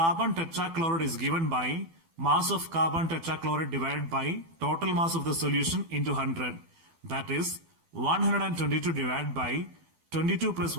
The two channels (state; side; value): late; left; 12 ms